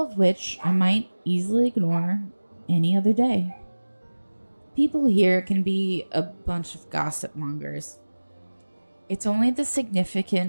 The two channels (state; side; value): inverted; both; correlation -1.00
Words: of which I might easily ignore any other day. People here can be a bunch of gossip mongers. It's only the